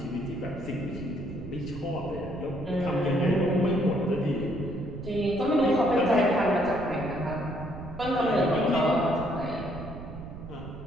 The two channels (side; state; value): right; noise; rumble, 12 dB below the sound